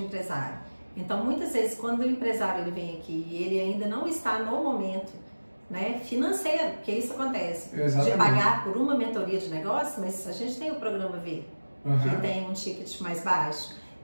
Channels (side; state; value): both; inverted; correlation -1.00